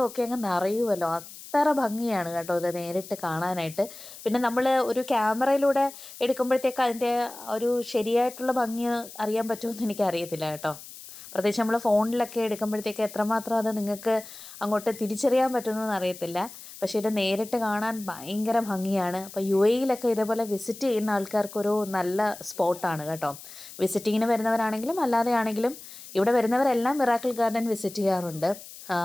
ഒക്കെ അങ്ങ് നിറയുമല്ലോ. അത്ര ഭംഗിയാണ് കേട്ടോ ഇത് നേരിട്ട് കാണാനായിട്ട്. പിന്നെ നമ്മൾ ഒരു ക്യാമറയിലൂടെ എടുക്കുമ്പോഴത്തേക്ക് അതിൻ്റെ ഒരു ശരിയായിട്ടുള്ള ഭംഗി അറിയാൻ പറ്റുമെന്ന് എനിക്കറിയത്തില്ല കേട്ടോ. പ്രത്യേകിച്ച് നമ്മൾ ഫോണിലൊക്കെ എടുക്കുമ്പോഴത്തേക്ക് എത്രമാത്രം അത് നിങ്ങൾക്ക് അങ്ങോട്ട് തിരിച്ചറിയാൻ പറ്റുമെന്ന് അറിയത്തില്ല. പക്ഷേ ഇത് നേരിട്ട് കാണാൻ ഭയങ്കര ഭംഗിയാണ്. അപ്പോൾ UAE-യിലൊക്കെ ഇതേപോലെ വിസിറ്റ് ചെയ്യുന്ന ആൾക്കാർക്കൊരു നല്ല സ്പോട്ടാണ് കേട്ടോ. വിസിറ്റിങ്ങിന് വരുന്നവരാണെങ്കിലും അല്ലാതെ ആണെങ്കിലും ഇവിടെ വരുന്നവരെല്ലാം മിറാക്കിൾ ഗാർഡൻ വിസിറ്റ് ചെയ്യാറുണ്ട്.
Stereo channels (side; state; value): left; noise; hiss, 16 dB below the sound